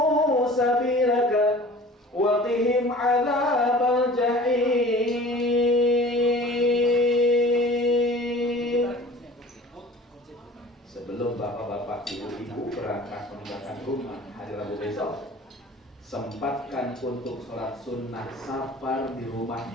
sabilaka wa qihim 'adzabal jahim. Sebelum bapak-bapak, ibu-ibu berangkat meninggalkan rumah hari Rabu besok, sempatkan untuk sholat sunnah safar di rumah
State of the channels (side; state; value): both; normal; correlation 0.44